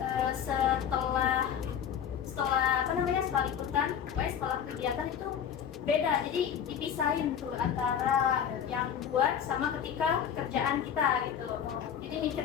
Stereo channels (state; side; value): quieter; right; 8.4 dB